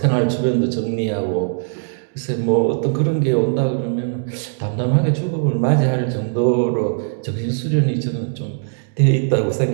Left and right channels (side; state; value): left; silent; digital silence